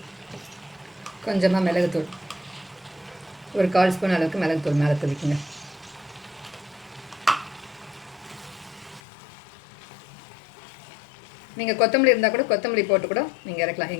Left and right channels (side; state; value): right; drops out; at 9.0 s